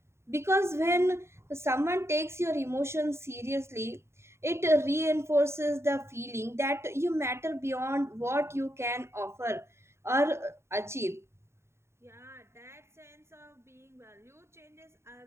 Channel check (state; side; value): late; left; 0.13 ms